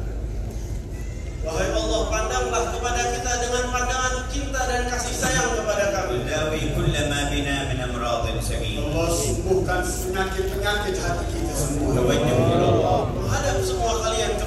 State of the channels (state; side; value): identical; both; correlation 1.00